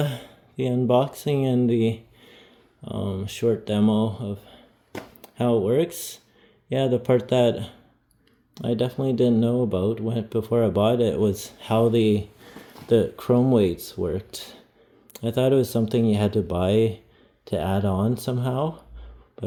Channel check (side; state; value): both; identical; correlation 1.00